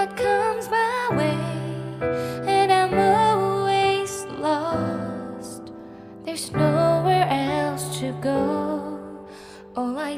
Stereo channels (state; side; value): identical; both; correlation 1.00